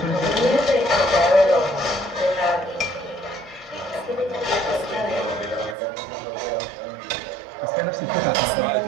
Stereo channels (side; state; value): left; drops out; at 5.8 s